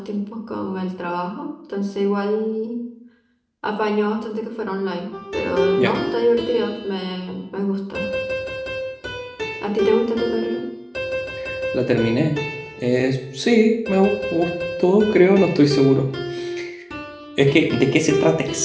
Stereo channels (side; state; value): both; identical; correlation 1.00